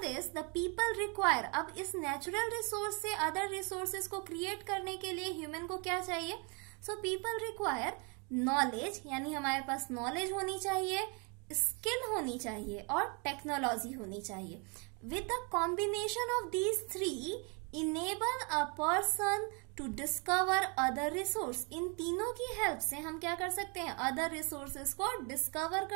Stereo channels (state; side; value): quieter; left; 33.8 dB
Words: this the people require, अब इस नेचुरल रिसोर्स से अदर रिसोर्सेज को क्रिएट करने के लिए ह्यूमन को क्या चाहिए? सो पीपल रिक्वायर नॉलेज, यानी हमारे पास नॉलेज होनी चाहिए, स्किल होनी चाहिए और टेक्नोलॉजी होनी चाहिए। With the combination of these three enable a person to discover other resource. इन तीनों की हेल्प से हम क्या कर सकते हैं, अदर रिसोर्सेज को डिस्कवर